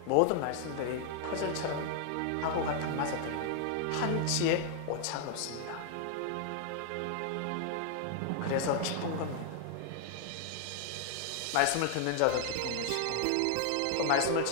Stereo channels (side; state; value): both; different; correlation 0.00